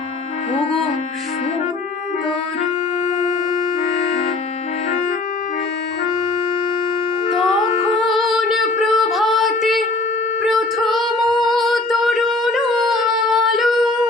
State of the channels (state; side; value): quieter; right; 3.3 dB